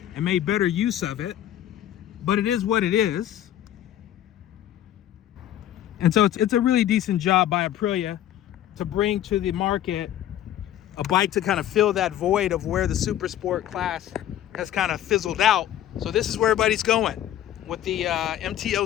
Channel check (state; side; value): quieter; right; 11.9 dB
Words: and made better use of it, but it is what it is. And so it's a really decent job by Aprilia to bring to the market a bike to kind of fill that void of where the super sport class has kind of fizzled out. So this is where everybody's going. With the